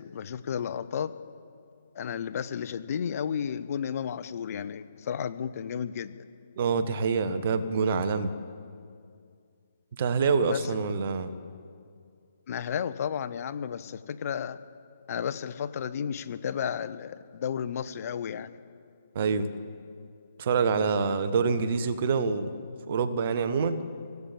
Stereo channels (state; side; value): inverted; both; correlation -0.65